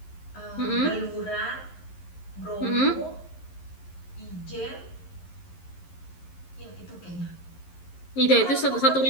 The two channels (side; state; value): right; late; 11 ms